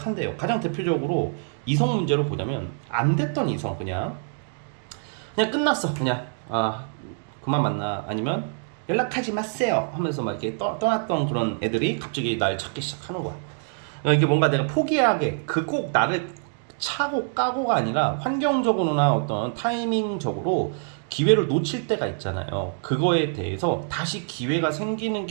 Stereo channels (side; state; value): left; silent; 62 dB below the other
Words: 가장 대표적으로 이성 문제로 보자면 안 됐던 이성, 그냥 끝났어. 그냥 그만 만나, 아니면 연락하지 마세요 하면서 막 이렇게 떠났던 그런 애들이 갑자기 날 찾기 시작하는 거야. 그러니까 이게 뭔가 내가 포기하게 그 꼭 나를 차고 까고가 아니라 환경적으로나 어떤 타이밍적으로 기회를 놓칠 때가 있잖아요. 그거에 대해서 다시 기회가 생기는